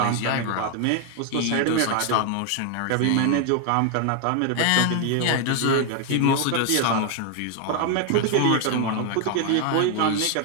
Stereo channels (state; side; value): different; both; correlation 0.00